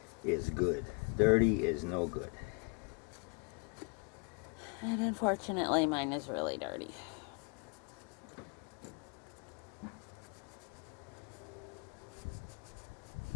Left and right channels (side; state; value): right; quieter; 36.6 dB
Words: good. Dirty is no good. And unfortunately, mine is really dirty.